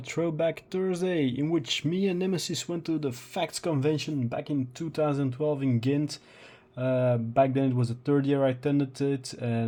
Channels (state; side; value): identical; both; correlation 1.00